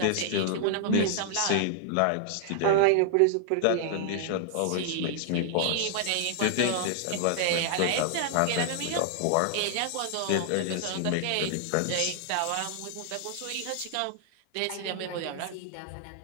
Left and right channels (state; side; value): different; both; correlation -0.01